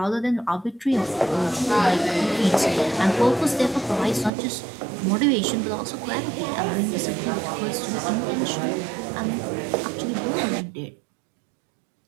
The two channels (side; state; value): left; drops out; at 4.3 s